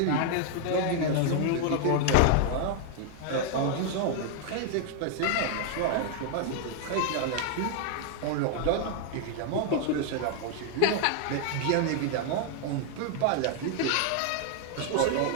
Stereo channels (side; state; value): both; different; correlation 0.00